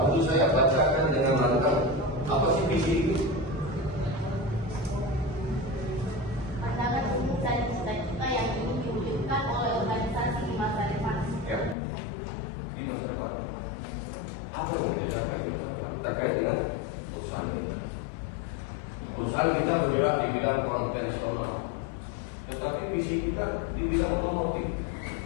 saya bacakan dengan lantang apa sih visi itu? Pandangan umum dan cita-cita yang ingin diwujudkan oleh organisasi di masa depan. Ya, di masa depan. Apa yang kita capai terkait dengan perusahaan kita? Perusahaan kita bergerak di bidang konvensional, tetapi visi kita di bidang otomotif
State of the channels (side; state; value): right; drops out; at 11.8 s